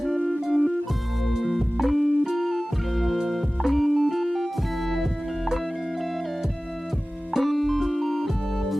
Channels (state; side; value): normal; both; correlation 0.97